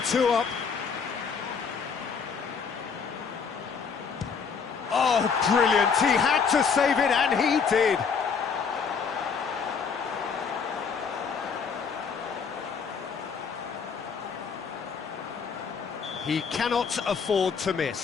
2 up. Oh, brilliant. He had to save it, and he did. He cannot afford to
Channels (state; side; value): quieter; right; 6.0 dB